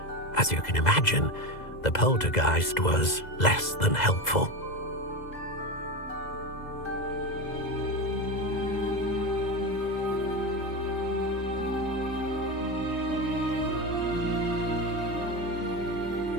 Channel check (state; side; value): late; right; 2.0 ms